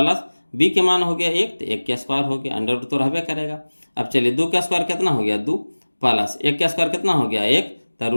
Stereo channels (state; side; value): inverted; both; correlation -1.00